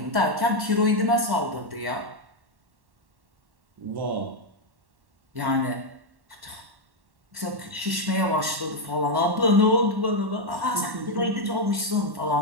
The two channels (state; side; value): late; left; 1.1 ms